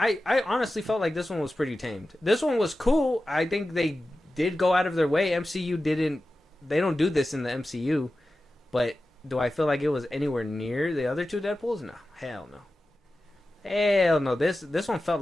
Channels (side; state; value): both; normal; correlation 0.94